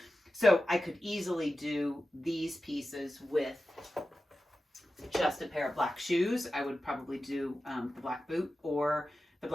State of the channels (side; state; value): both; normal; correlation 0.93